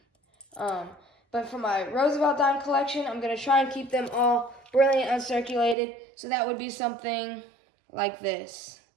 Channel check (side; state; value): left; drops out; at 5.8 s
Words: But for my Roosevelt dime collection, I'm going to try and keep them all brilliant uncirculated, so that would be something like this.